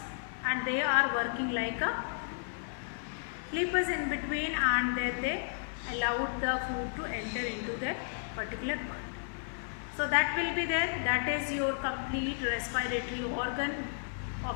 and they are working like a flippers in between, and then they allowed the food to enter into that particular part. So that will be there, that is your complete respiratory organ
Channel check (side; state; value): right; silent; digital silence